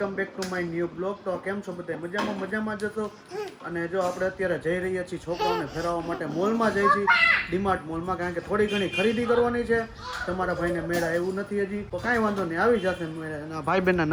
back to my new blog. તો કેમ છો બધા? મજામાં જશો. અને જો આપણે અત્યારે જઈ રહ્યા છીએ છોકરાઓને ફેરવવા માટે મોલમાં જઈ છીએ, ડીમાર્ટ મોલમાં, કારણ કે થોડી ઘણી ખરીદી કરવાની છે. તમારા ભાઈને મેળા એવું નથી હજી, તો કાંઈ વાંધો નહીં, આવી જશે મેળા. અને ભાઈ બહેનના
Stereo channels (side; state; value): both; identical; correlation 1.00